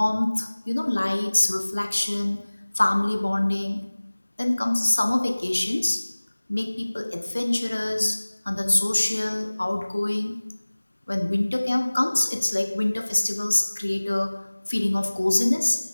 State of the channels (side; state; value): both; inverted; correlation -1.00